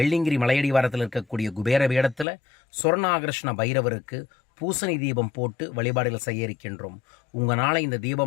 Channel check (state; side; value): drops out; right; at 2.2 s